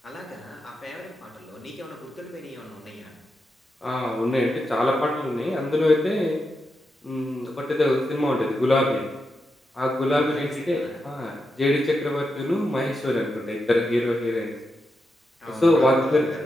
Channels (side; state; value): both; normal; correlation 0.86